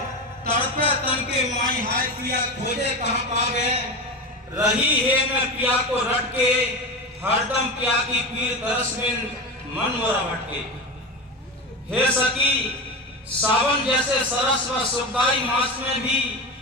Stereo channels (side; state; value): both; normal; correlation 0.23